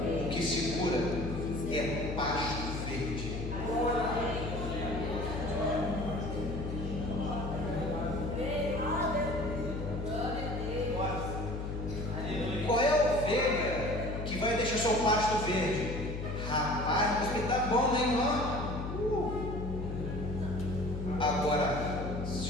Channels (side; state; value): left; noise; hum, 5 dB below the sound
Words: o que segura é pasto verde. Qual é a ovelha que vai deixar seu pasto verde? Rapaz, mas tá bom, né, irmão? Agora,